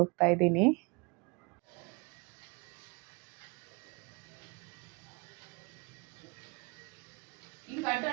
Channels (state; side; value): quieter; left; 29.4 dB